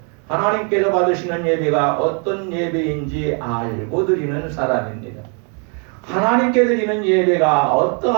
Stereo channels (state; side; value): quieter; left; 38.2 dB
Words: 하나님께서 받으시는 예배가 어떤 예배인지 알고 드리는 사람입니다. 하나님께 드리는 예배가